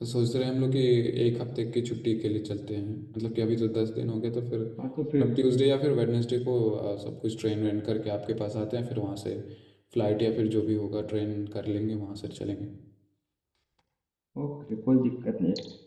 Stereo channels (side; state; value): both; identical; correlation 1.00